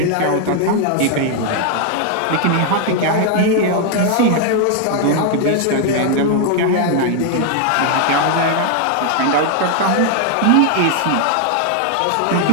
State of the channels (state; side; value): different; both; correlation 0.00